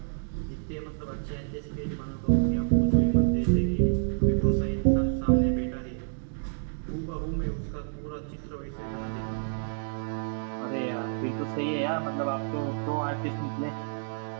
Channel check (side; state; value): left; silent; digital silence